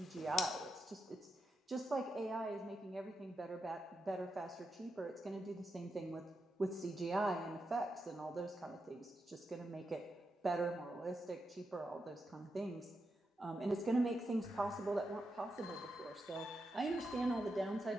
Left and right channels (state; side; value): normal; both; correlation 0.86